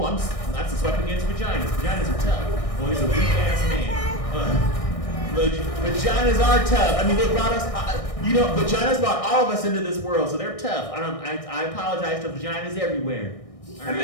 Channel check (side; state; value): right; late; 1.6 ms